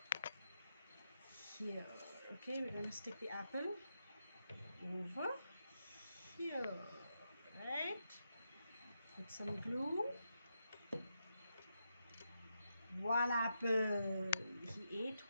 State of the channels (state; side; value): inverted; both; correlation -0.85